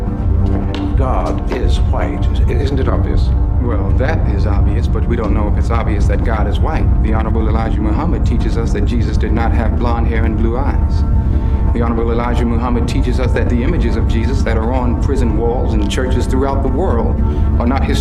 God is white. Isn't it obvious? Well, that is obvious, but we don't know if it's obvious that God is white. The Honorable Elijah Muhammad teaches us that Jesus did not have blonde hair and blue eyes. The Honorable Elijah Muhammad teaches us that the images of Jesus that are on prison walls and churches throughout the world are not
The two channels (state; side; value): identical; both; correlation 1.00